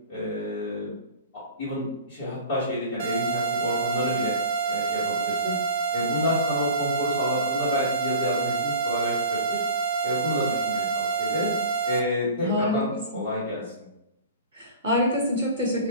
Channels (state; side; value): inverted; both; correlation -0.39